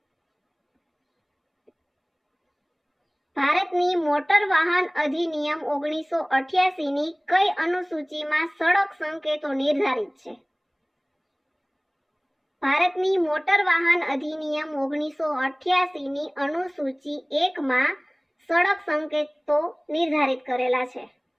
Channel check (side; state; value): both; identical; correlation 1.00